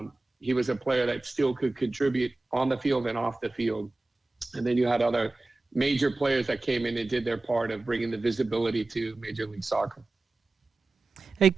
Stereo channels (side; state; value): left; quieter; 3.1 dB